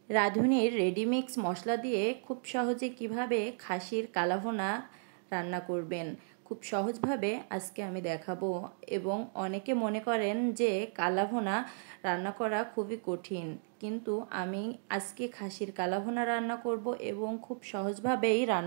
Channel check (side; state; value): left; silent; digital silence